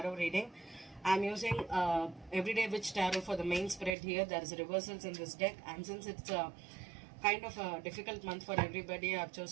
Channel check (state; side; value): drops out; left; at 4.0 s